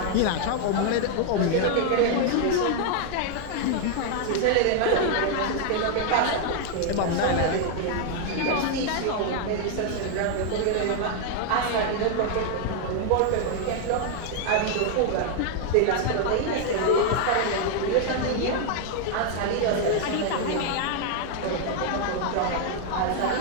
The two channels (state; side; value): different; both; correlation 0.00